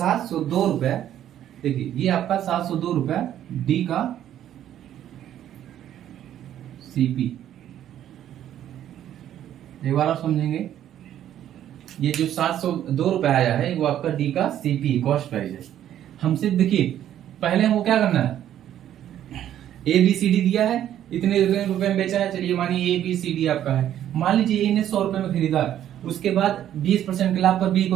रुपए। देखिए ये आपका 702 रुपए डी का सीपी। एक बार आप समझेंगे, ये जो 702 रुपए आया है वो आपका डी का सीपी कॉस्ट प्राइस है। हमसे देखिए पहले हमको क्या करना है, ए बी सी डी दिया है, इतने रुपए में बेचा है, चलिए मानिए ए बी सी डी आपका है। मान लीजिए ए ने 100 रुपए में खरीदा, उसके बाद 20% के लाभ पर बी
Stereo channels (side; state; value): left; quieter; 11.2 dB